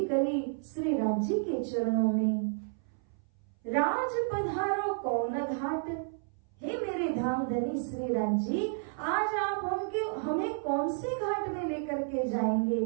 करी श्री राजी के चरणों में, राज पधारो कौन घाट। हे मेरे धाम धनी श्री राजी, आज आप हमें कौन से घाट में लेकर के जाएंगे,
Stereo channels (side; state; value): left; silent; 57 dB below the other